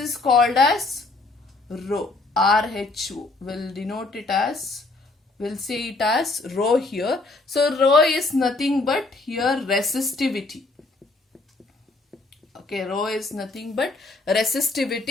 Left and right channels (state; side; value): quieter; right; 3.3 dB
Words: called as rho, RHO. We'll denote it as, we'll say it as rho here. So rho is nothing but here resistivity. Okay, rho is nothing but